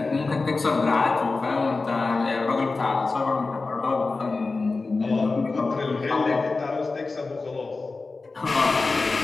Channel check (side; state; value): right; quieter; 3.8 dB